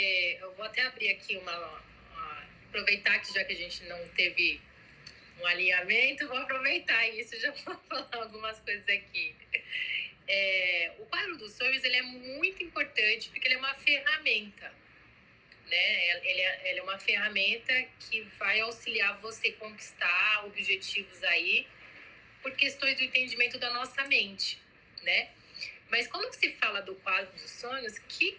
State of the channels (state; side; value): identical; both; correlation 1.00